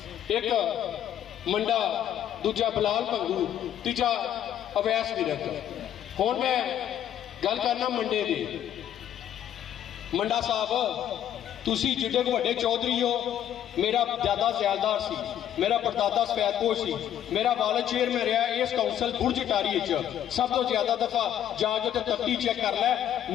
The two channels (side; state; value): right; quieter; 10.7 dB